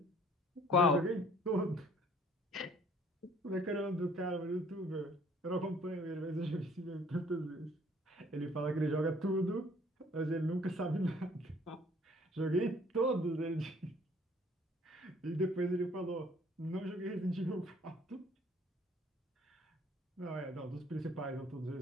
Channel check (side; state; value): both; normal; correlation 0.58